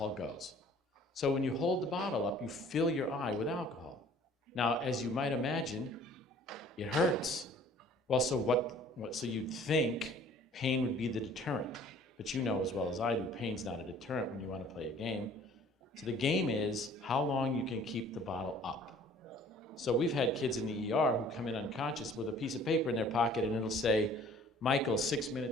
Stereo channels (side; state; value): both; normal; correlation 0.52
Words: goes. So when you hold the bottle up, you fill your eye with alcohol. Now, as you might imagine, it hurts. Well, so you'd think pain would be the deterrent. But you know as well as I do, pain's not a deterrent when you want to play a game. So the game is how long you can keep the bottle up. So we've had kids in the ER who come in unconscious with a piece of paper in their pocket, and it'll say, Michael, 6